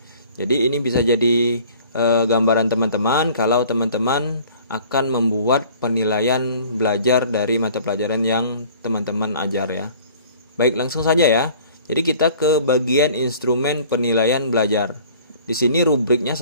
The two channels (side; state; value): both; inverted; correlation -0.50